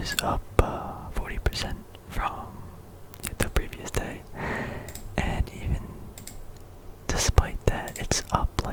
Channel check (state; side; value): identical; both; correlation 1.00